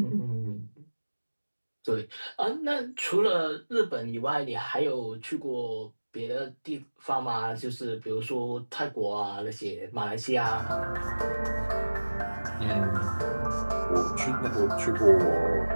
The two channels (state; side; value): inverted; both; correlation -1.00